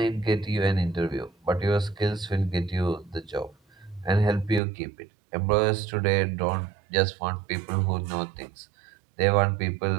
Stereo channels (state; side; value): drops out; left; at 4.6 s